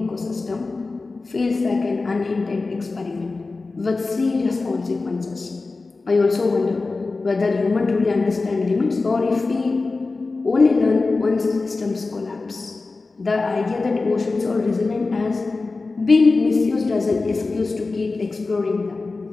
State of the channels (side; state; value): right; quieter; 3.7 dB